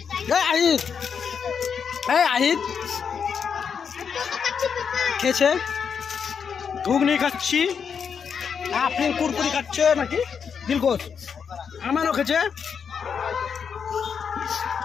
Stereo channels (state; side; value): quieter; right; 6.7 dB